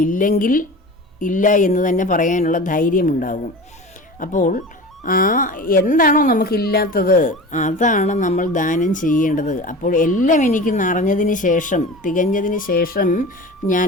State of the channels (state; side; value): normal; both; correlation 0.34